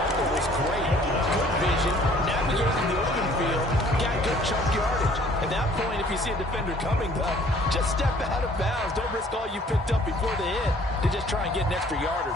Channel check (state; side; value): normal; both; correlation 0.56